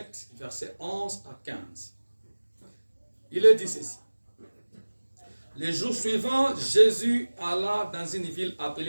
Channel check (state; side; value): inverted; both; correlation -1.00